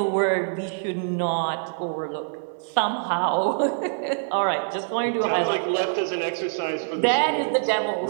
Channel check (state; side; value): silent; left; digital silence